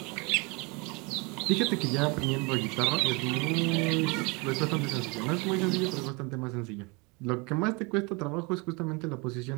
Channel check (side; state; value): left; quieter; 28.2 dB